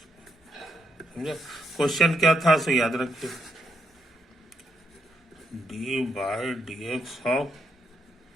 समझे? क्वेश्चन क्या था सो याद रखिए, d/dx ऑफ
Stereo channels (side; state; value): both; normal; correlation 0.78